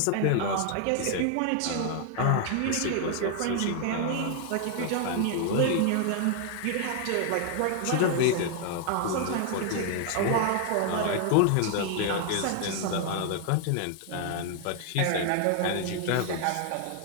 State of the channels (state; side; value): different; both; correlation 0.00